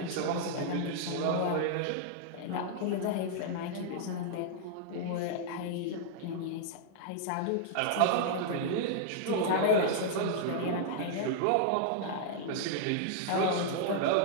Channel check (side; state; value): both; different; correlation -0.01